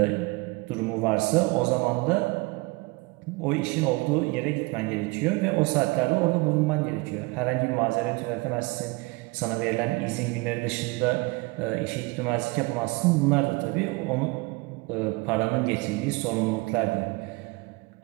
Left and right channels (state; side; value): quieter; left; 25.5 dB